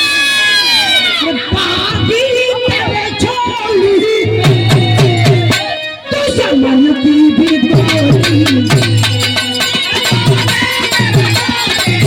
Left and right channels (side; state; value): both; identical; correlation 1.00